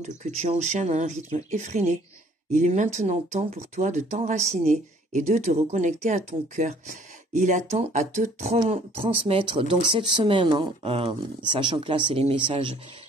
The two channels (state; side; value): normal; both; correlation 0.58